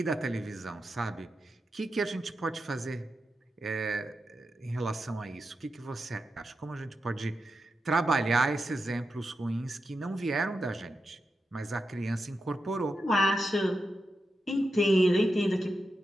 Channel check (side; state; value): both; normal; correlation 0.88